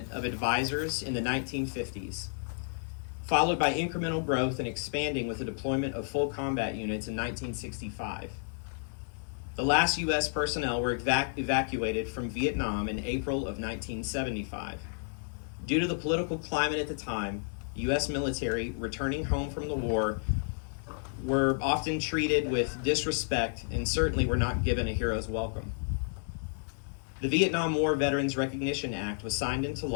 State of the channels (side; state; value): right; silent; digital silence